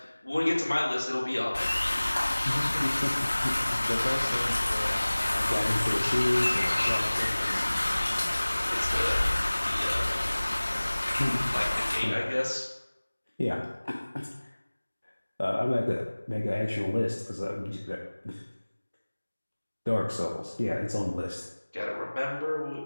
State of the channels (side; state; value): both; inverted; correlation -1.00